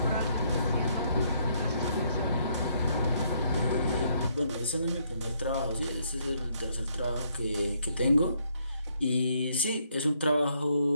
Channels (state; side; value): inverted; both; correlation -0.71